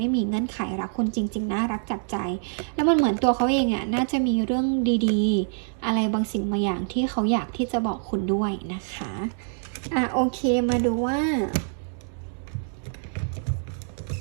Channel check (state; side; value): silent; left; digital silence